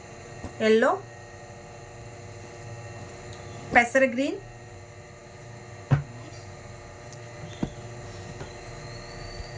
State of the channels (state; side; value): identical; both; correlation 1.00